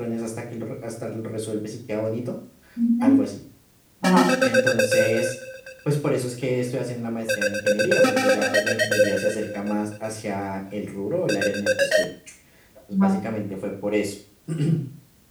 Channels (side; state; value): both; identical; correlation 1.00